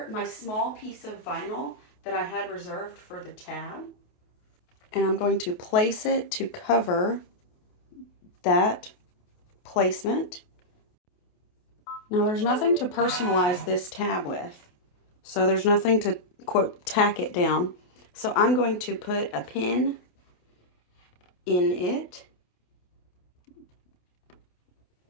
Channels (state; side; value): late; right; 28 ms